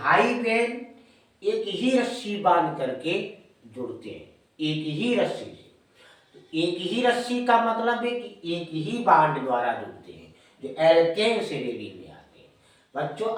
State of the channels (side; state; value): both; identical; correlation 1.00